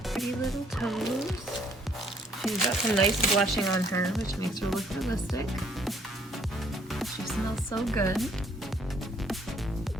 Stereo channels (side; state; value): both; normal; correlation 0.65